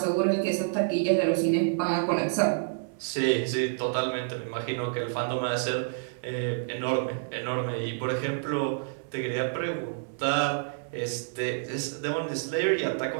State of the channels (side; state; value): left; silent; digital silence